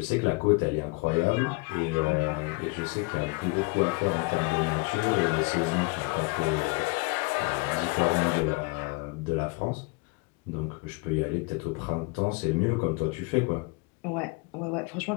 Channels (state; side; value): quieter; right; 28.0 dB